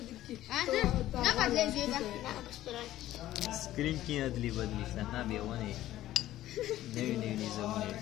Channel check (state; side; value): quieter; right; 14.2 dB